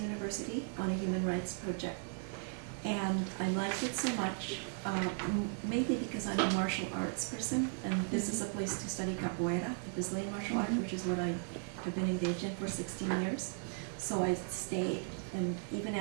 on a human rights project. And I liked it so much, mainly because I'm a martial arts person, and this is a place to study capoeira, the Brazilian martial art, which is what I have been engaged in for 16 years. So I stayed, and even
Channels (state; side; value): silent; left; 53 dB below the other